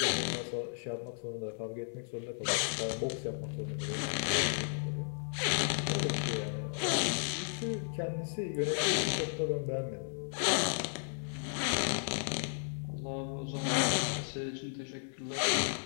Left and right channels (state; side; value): silent; right; digital silence